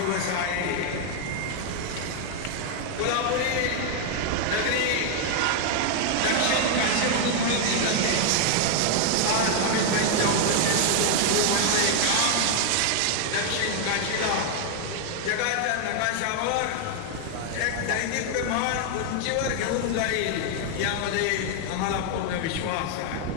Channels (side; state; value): both; different; correlation 0.00